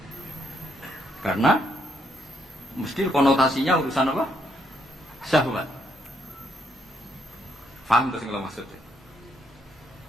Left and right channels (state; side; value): normal; both; correlation 0.73